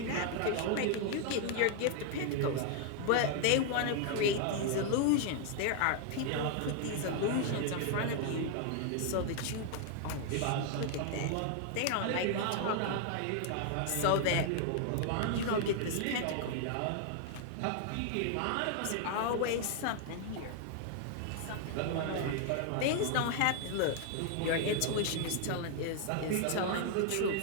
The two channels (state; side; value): different; both; correlation 0.00